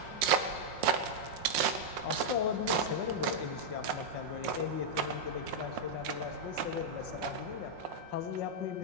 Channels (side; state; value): left; late; 5.6 ms